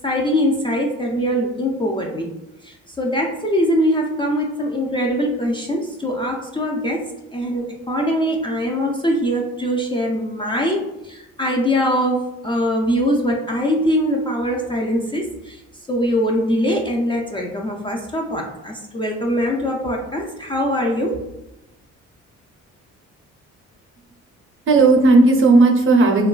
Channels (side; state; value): both; normal; correlation 0.52